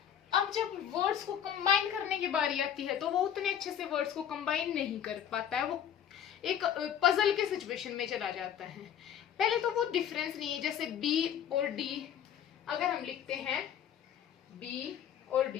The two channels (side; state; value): right; quieter; 9.3 dB